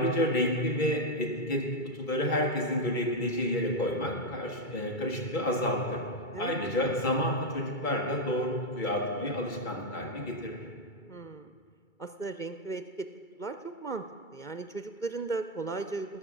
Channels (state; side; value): late; right; 2.3 ms